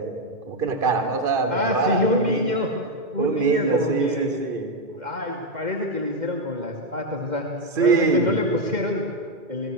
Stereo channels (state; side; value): late; left; 2.5 ms